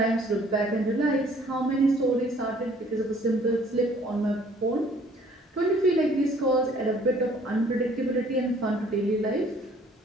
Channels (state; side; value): normal; both; correlation 0.58